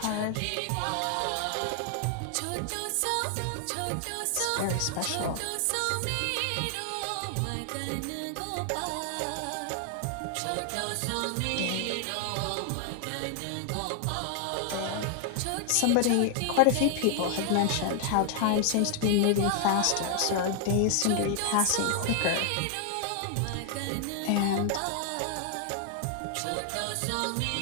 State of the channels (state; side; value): different; both; correlation 0.00